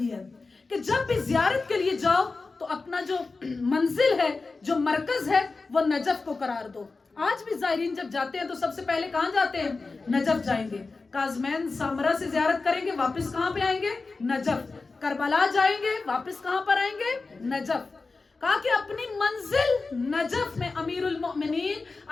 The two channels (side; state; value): right; quieter; 3.9 dB